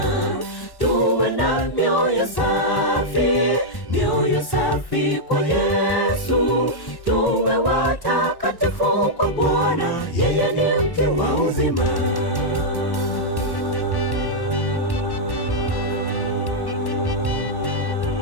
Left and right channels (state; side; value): late; right; 1.1 ms